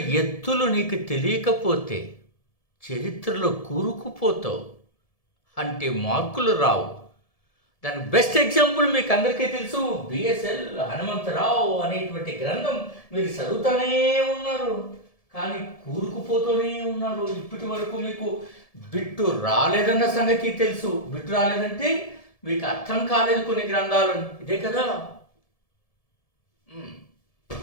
ఎత్తులు నీకు తెలియకపోతే చరిత్రలో కూరుకుపోతావు, అంటే మార్కులు రావు. దానికి బెస్ట్ ఎగ్జాంపుల్ మీకు అందరికీ తెలుసు, బిఎస్ఎల్ హనుమంతరావు అనేటువంటి గ్రంథం మీరు చదువుతూనే ఉన్నారు, కానీ కూరుకుపోతూనే ఉన్నారు. ఇప్పటి వరకు మీకు బిట్టు రాలేదన్న సంగతి తెలుసు. బిట్టు రాలేదంటే మీకు అర్థం కాలేదు కొన్ని గ్రంథాలు, ఇదే కదా.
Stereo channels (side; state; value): right; late; 1.7 ms